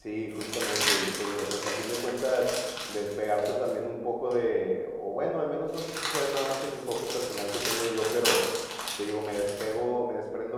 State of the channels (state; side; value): identical; both; correlation 1.00